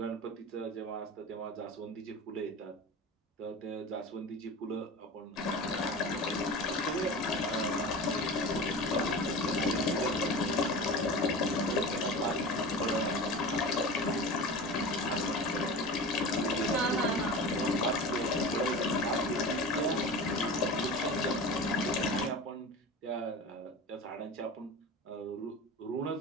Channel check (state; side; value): normal; both; correlation 0.32